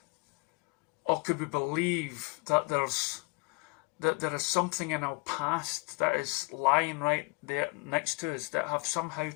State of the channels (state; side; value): quieter; right; 28.6 dB